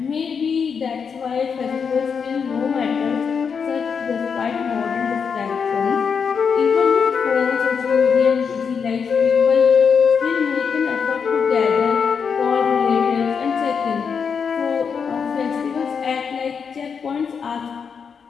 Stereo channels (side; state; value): right; quieter; 6.3 dB